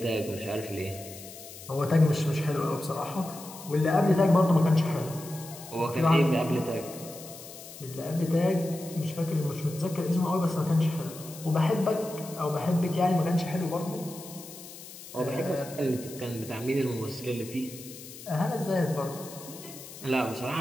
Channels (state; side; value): noise; left; hiss, 15 dB below the sound